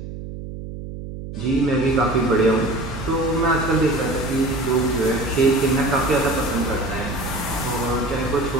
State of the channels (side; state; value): right; noise; hum, 10 dB below the sound